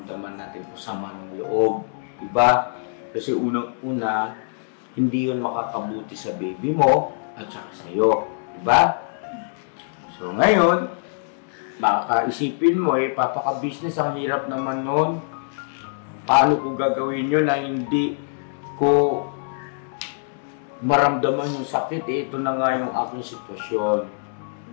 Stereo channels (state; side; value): silent; right; digital silence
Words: natin o sama ng loob. Diba? Kasi unang-una, hindi yun makakabuti sa baby mo at saka sa'yo. Diba? So ngayon, makakaisipin mo papaka-business, ang hirap naman nun. Paano ko gagawin yun na hindi ko maramdaman yung sakit? Ito na nga yung aking sitwasyon.